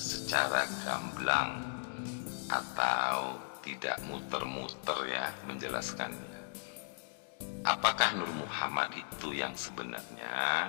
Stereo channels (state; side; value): silent; right; digital silence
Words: gamblang atau tidak muter-muter ya menjelaskannya. Apakah Nur Muhammad itu yang